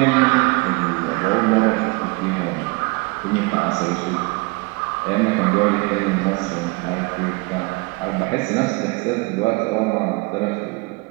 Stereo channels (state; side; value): quieter; left; 26.9 dB